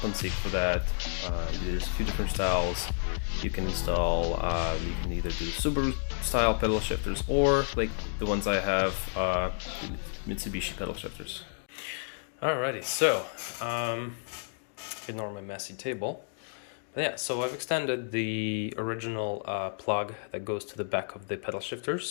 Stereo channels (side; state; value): right; silent; digital silence